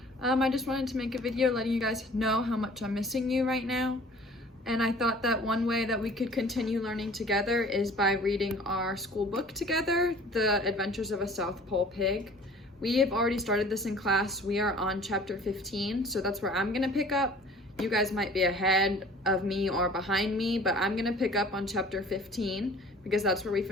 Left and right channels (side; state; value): both; normal; correlation 0.49